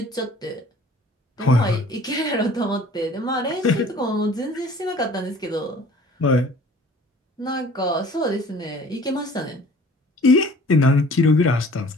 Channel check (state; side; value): normal; both; correlation 0.49